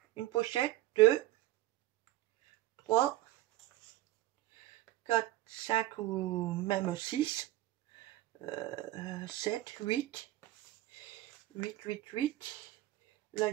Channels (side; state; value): left; quieter; 15.9 dB